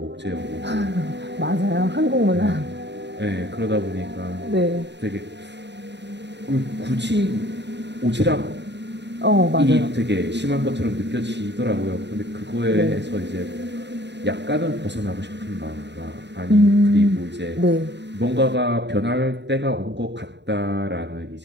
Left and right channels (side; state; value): left; late; 0.51 ms